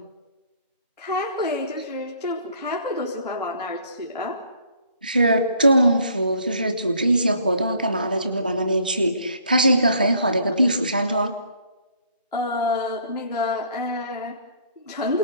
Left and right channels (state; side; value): inverted; both; correlation -0.61